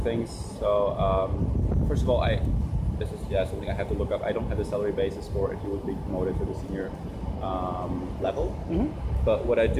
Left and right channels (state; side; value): identical; both; correlation 1.00